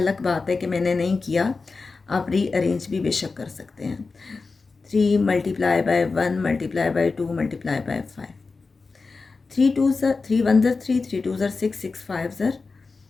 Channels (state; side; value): quieter; right; 4.2 dB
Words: बात है कि मैंने नहीं किया, आप रीअरेंज भी बेशक कर सकते हैं। 3 multiply by 1 multiply by 2 multiply bye 5। 3 2 ज़र 3 1 ज़र 3, 3 2 ज़र 6, 6 5 ज़र